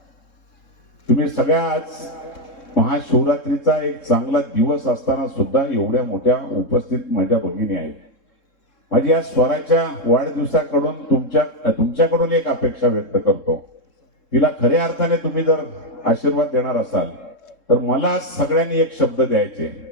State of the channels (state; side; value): late; right; 3.7 ms